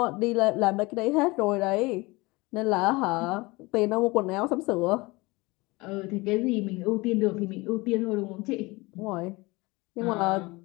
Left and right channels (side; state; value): right; quieter; 23.3 dB